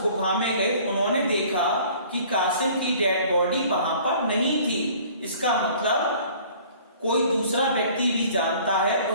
गुफा में गए, उन्होंने देखा कि कासिम की डेड बॉडी वहां पर नहीं थी। इसका मतलब कोई दूसरा व्यक्ति भी जानता है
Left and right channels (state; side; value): inverted; both; correlation -0.51